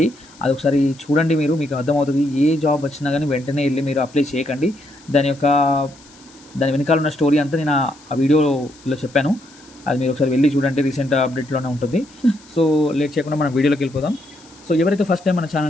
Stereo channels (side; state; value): left; noise; hiss, 25 dB below the sound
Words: అది ఒకసారి చూడండి, మీకు అర్థమవుతుంది. ఏ జాబ్ వచ్చినా కానీ వెంటనే వెళ్ళి మీరు అప్లై చేయకండి. దాని వెనకాల ఉన్న స్టోరీ అంతా నేను ఆ వీడియోలో చెప్పాను. అది మీరు ఒకసారి వెళ్ళి చూడండి, రీసెంట్ అప్డేట్లోనే ఉంటుంది. సో లేట్ చేయకుండా మనం వీడియోలోకి వెళ్ళిపోదాం. సో ఎవరైతే ఫస్ట్ టైం మన